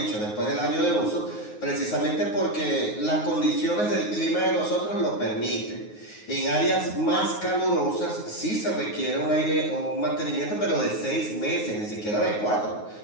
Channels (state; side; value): late; right; 9.5 ms